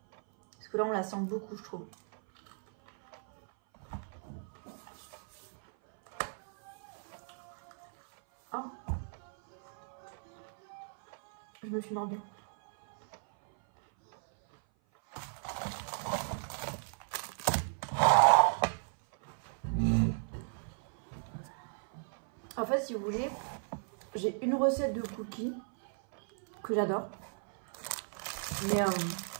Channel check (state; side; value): silent; left; 54 dB below the other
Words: Parce que là on la sent beaucoup je trouve. Oh. Je me suis mordue. En fait si vous voulez, j'ai une recette de cookies que j'adore. Mais